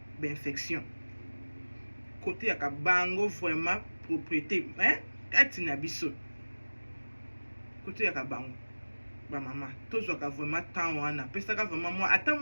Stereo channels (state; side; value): inverted; both; correlation -1.00